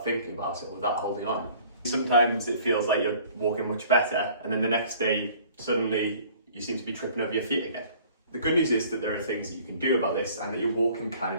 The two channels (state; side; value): inverted; both; correlation -0.52